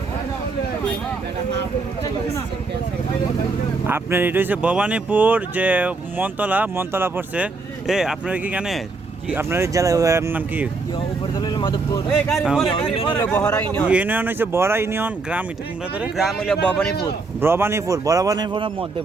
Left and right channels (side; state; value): left; quieter; 3.8 dB